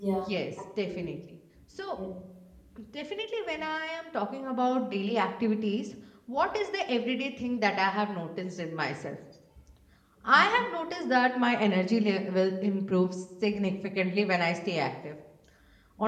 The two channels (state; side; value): identical; both; correlation 1.00